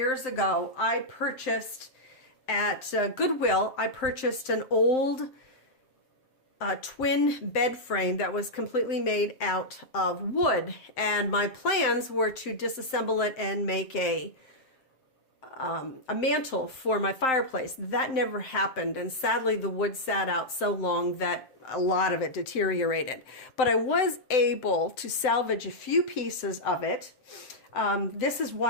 ago, I purchased at Goodwill, I purchased an old twin bed frame that was completely made out of wood. And my plans were to disassemble it and make a mantle for my fireplace. That never happened, and sadly the wood sat out so long that a lot of it deteriorated. But I was able to salvage a few pieces of it. This is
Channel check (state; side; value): late; right; 7.7 ms